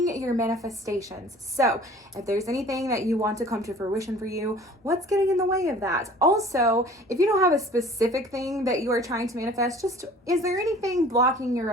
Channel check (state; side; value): normal; both; correlation 0.48